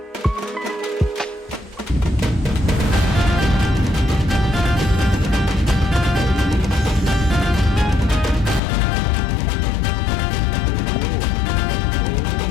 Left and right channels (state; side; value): drops out; right; at 8.6 s